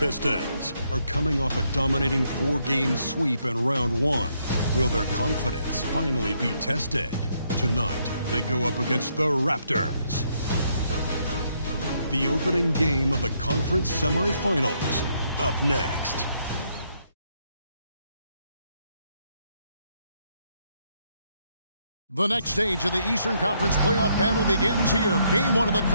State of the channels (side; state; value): both; inverted; correlation -0.74